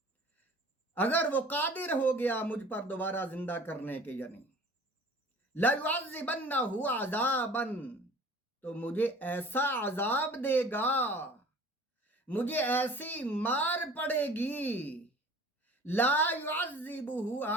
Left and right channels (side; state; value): both; normal; correlation 0.46